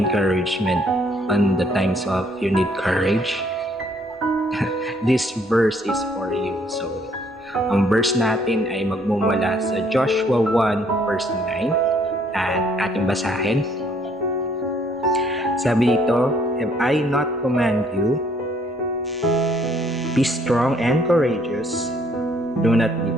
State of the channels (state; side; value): normal; both; correlation 0.64